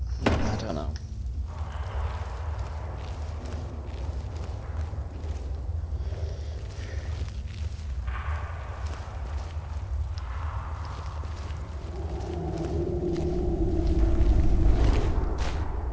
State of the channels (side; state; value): both; identical; correlation 1.00